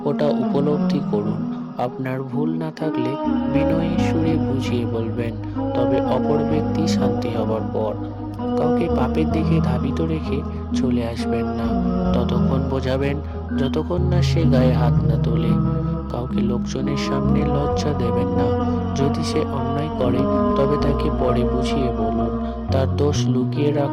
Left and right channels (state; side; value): identical; both; correlation 1.00